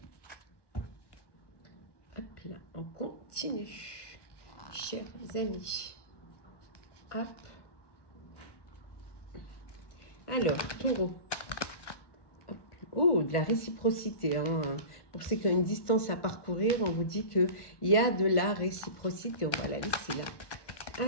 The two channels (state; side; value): late; right; 1.2 ms